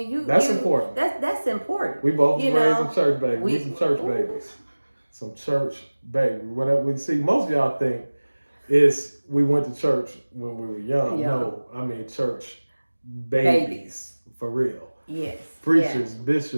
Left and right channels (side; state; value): both; inverted; correlation -1.00